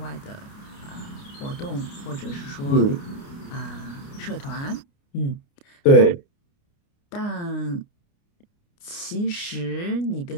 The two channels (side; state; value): right; late; 29 ms